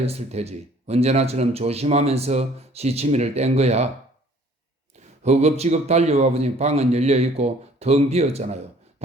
테지. 언제나처럼 조심하면서 시치미를 뗀 거야. 허겁지겁 달려와 보니 방은 열려있고 텅 비었잖아요.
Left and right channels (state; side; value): normal; both; correlation 0.56